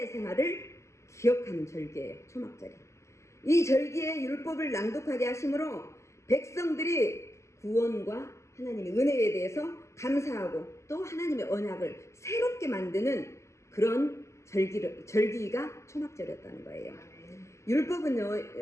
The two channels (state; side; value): late; right; 0.14 ms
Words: 생활을 기억하는 절기예요. 초막절이. 이 절기에 율법을 낭독하게 하심으로 백성들이 구원과 하나님의 은혜에 대해서 감사하고 또 하나님의 언약을 새롭게 만드는 그런 절기가 초막절이었다는 거예요. 율법은요,